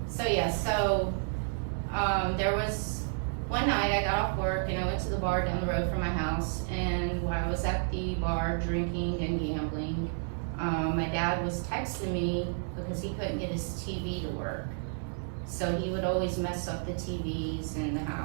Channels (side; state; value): left; silent; 57 dB below the other